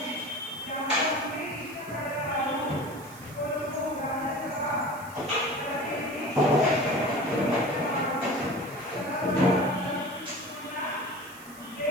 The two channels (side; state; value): right; noise; hiss, 19 dB below the sound